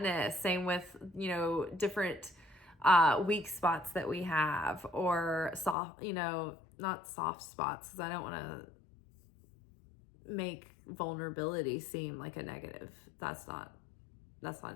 same with, different weak spots that we have, or soft, not soft spots, because I don't want to make vulnerability seem like a negative. That's not it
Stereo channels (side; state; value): right; drops out; at 5.8 s